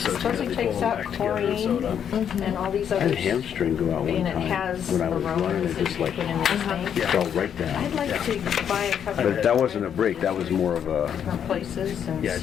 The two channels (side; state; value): right; quieter; 8.6 dB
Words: sew it supposedly together, takes pull them out back together and sew it up. chlorine and all these I had other. a hamstring go out one And it time has when I was running, aromas it that just you like put in this thing. fell right I'd down. like to buy a couple But that wasn't a break, that was more of a, different places and Yeah,